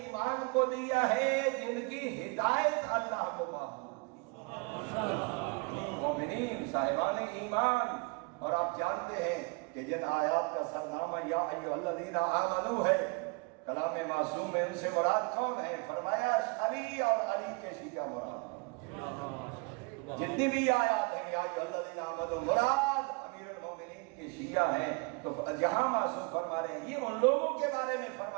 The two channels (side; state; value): left; quieter; 30.9 dB